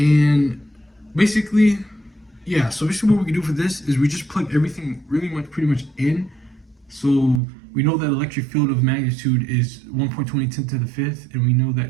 basically, yeah, so basically what we can do for this is we just plug everything pretty much in. So we know that electric field of magnitude is 1.20 10 to the fifth, and we know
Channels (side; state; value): left; drops out; at 7.4 s